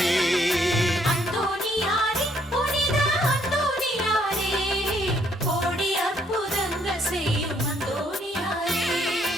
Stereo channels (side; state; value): both; normal; correlation 0.68